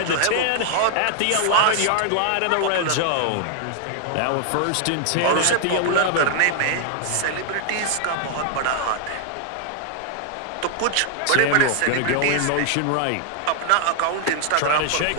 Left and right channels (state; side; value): different; both; correlation 0.00